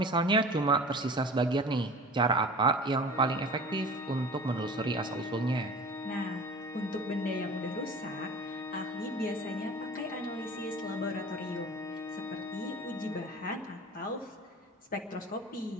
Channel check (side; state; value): both; normal; correlation 0.40